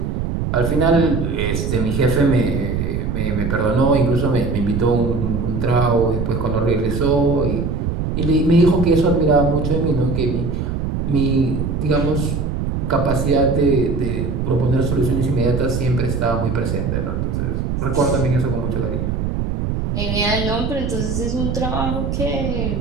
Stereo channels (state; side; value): noise; right; rumble, 1 dB below the sound